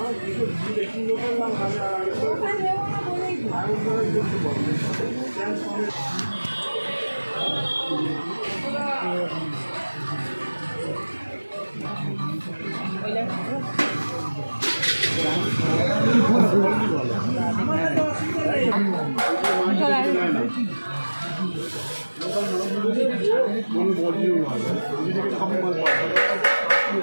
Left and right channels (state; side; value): inverted; both; correlation -1.00